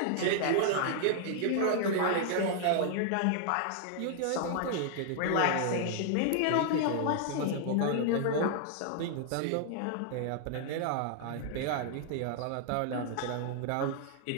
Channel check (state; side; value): different; both; correlation 0.00